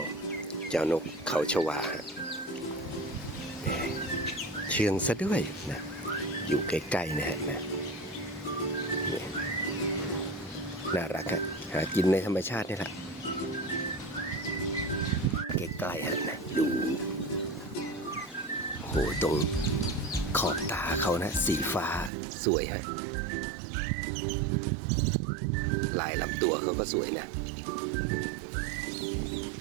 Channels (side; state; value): left; drops out; at 22.1 s